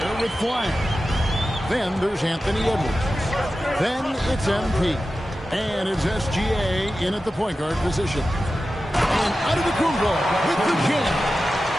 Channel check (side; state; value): both; normal; correlation 0.93